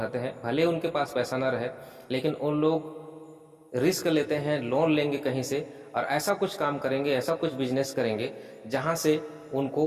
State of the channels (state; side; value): identical; both; correlation 1.00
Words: हैं, भले उनके पास पैसा ना रहे लेकिन उन लोग रिस्क लेते हैं, लोन लेंगे कहीं से और ऐसा कुछ काम करेंगे, ऐसा कुछ बिजनेस करेंगे जहां से उनको